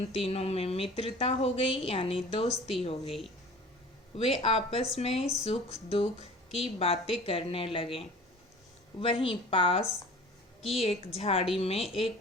तीनों में मित्रता हो गई, यानी दोस्ती हो गई। वे आपस में सुख दुख की बातें करने लगे। वहीं पास की एक झाड़ी में एक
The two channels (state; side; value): normal; both; correlation 0.44